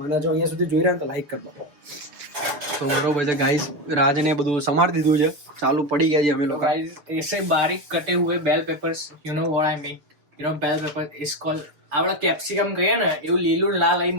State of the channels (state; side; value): late; left; 6.8 ms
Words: અને જો અહીંયા સુધી જોઈ રહ્યા તો લાઈક કરી દો. તો બરોબર છે ગાઈસ, રાજને બધું સમારી દીધું છે, ચાલુ પડી ગયા છે અમે લોકો. गाइस ऐसे बारीक कटे हुए bell peppers, you know what I mean, you know bell pepper is called. આપડા કેપ્સિકમ કહીએ ને એવું લીલું લાલ અહીં